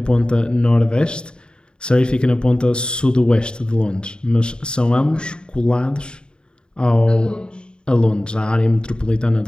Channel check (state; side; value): late; right; 0.050 ms